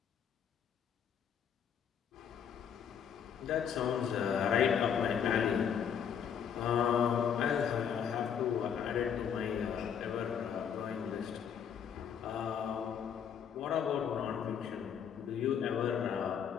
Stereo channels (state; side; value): quieter; right; 8.0 dB